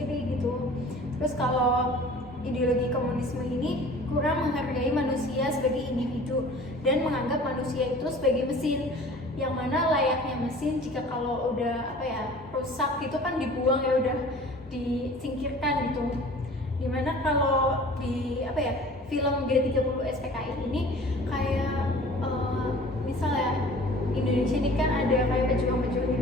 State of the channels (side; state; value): both; normal; correlation 0.45